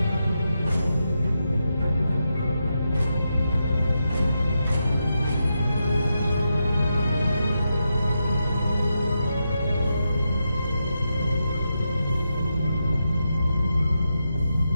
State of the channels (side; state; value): both; inverted; correlation -0.86